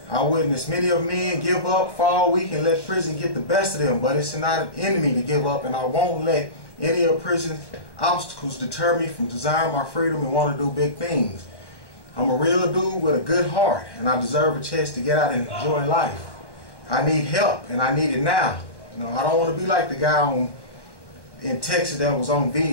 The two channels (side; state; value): right; late; 1.1 ms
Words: I witnessed many of men give up, fall weak, and let prison get the best of them, but it's not an enemy to give up, and I won't let any of prison's obstacles deter me from desiring my freedom and want to do big things. I'm a real dude with a good heart, and I deserve a chance to get out and enjoy life. I need help, and I need it now. You know, I don't want to be like the guy in Texas that was on